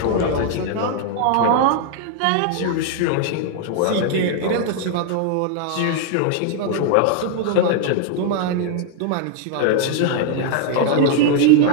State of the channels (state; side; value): different; both; correlation 0.00